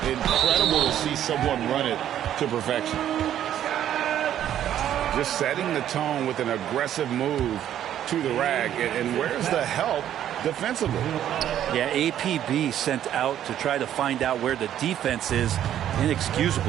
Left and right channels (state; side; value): quieter; left; 11.0 dB